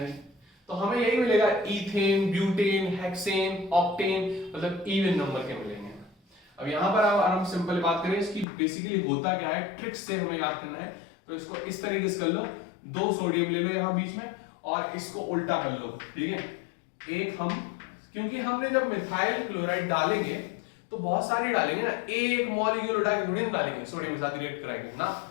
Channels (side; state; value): right; drops out; at 8.5 s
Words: तो हमें यही मिलेगा, ईथेन, ब्यूटेन, हेक्सेन, ऑक्टेन, मतलब इवन नंबर के मिलेंगे। अब यहां पर हम सिंपल बात करें इसकी, बेसिकली होता क्या है, ट्रिक्स से हमें याद करना है। तो इसको इस तरीके से कर लो, 2 सोडियम ले लो यहां बीच में और इसको उल्टा कर लो, ठीक है। एक हम, क्योंकि हमने जब मिथाइल क्लोराइड डालेंगे तो बहुत सारी डालेंगे ना, एक मॉलिक्यूल उठा के थोड़ी ना डालेंगे, सोडियम के साथ रिएक्ट कराएंगे ना।